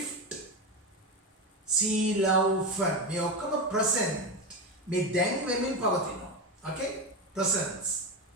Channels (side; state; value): both; normal; correlation 0.17